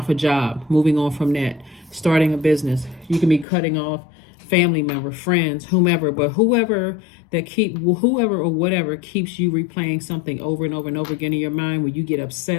a job, moving on from that, starting a business. You can be cutting off family member, friends, whomever, but whoever or whatever keeps you replaying something over and over and over again in your mind, where you get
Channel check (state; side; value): drops out; right; at 3.5 s